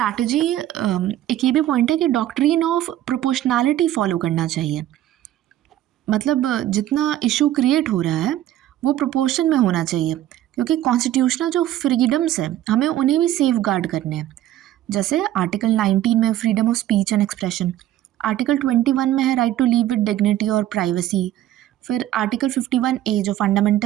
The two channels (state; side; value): quieter; left; 13.1 dB